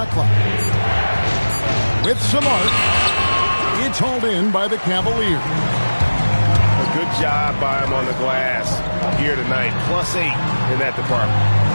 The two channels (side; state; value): both; inverted; correlation -1.00